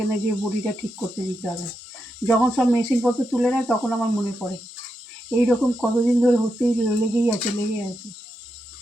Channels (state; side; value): normal; both; correlation 0.86